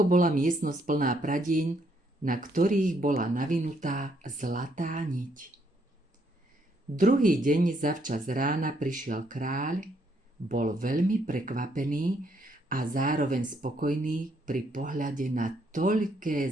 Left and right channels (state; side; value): normal; both; correlation 0.72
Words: bola miestnosť plná pradieň, na ktorých bola navinutá zlatá niť. Druhý deň zavčas rána prišiel kráľ, bol veľmi prekvapený a zároveň spokojný pri pohľade na toľké